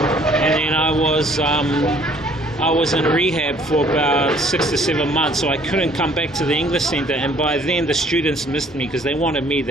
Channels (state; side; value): normal; both; correlation 0.59